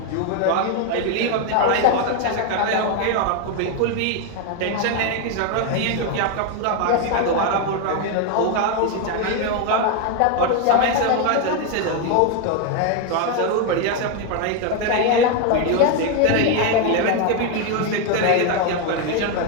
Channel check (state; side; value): different; both; correlation 0.01